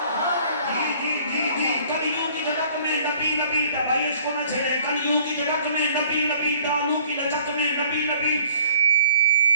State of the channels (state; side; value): inverted; both; correlation -0.55